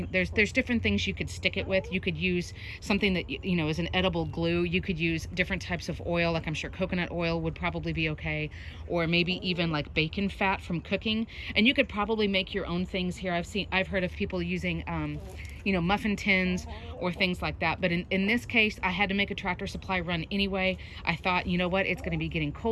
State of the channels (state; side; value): identical; both; correlation 1.00